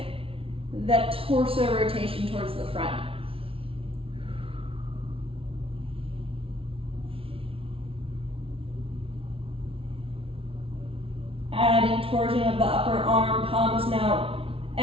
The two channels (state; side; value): late; left; 0.26 ms